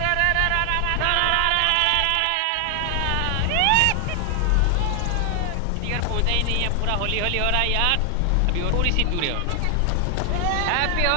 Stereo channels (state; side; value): different; both; correlation 0.00